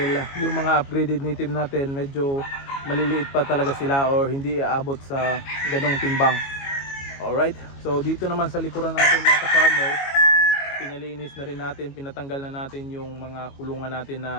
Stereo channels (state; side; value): late; right; 22 ms